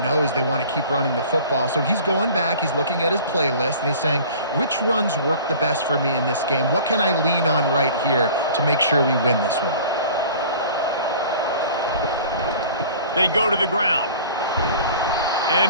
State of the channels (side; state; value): both; inverted; correlation -0.44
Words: knows they want to keep running the football. So he's going back, he's looking at his playlist, and he's saying, which runs work the best for me in this game? What can I lean on right here to make sure we win this one? They go to the ground.